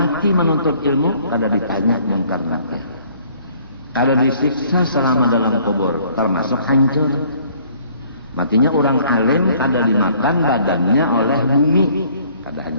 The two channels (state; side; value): inverted; both; correlation -0.59